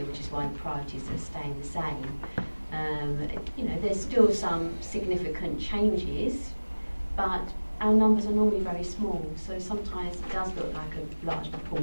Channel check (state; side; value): inverted; both; correlation -1.00